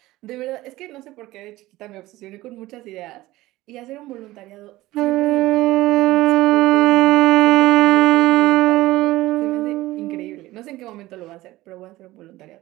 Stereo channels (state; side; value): quieter; left; 17.6 dB